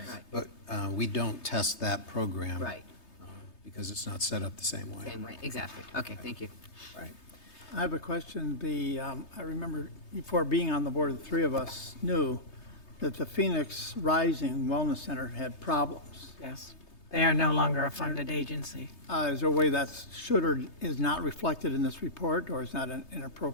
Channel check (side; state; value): right; late; 3.3 ms